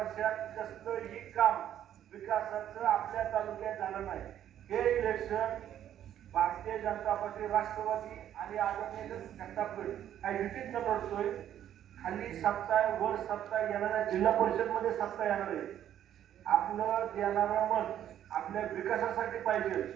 कसलंही काम विकासाचं आपल्या तालुक्यात झालं नाही. हे इलेक्शन भारतीय जनता पार्टी, राष्ट्रवादी आणि आदरणीय घंटापीठ काही युतीत न लढतोय. खाली सत्ता आहे, वर सत्ता येणाऱ्या जिल्हा परिषद मध्ये सत्ता येणार आहे. आपलं देणारं मत आपल्या विकासासाठी पाहिजे,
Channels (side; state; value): left; quieter; 10.9 dB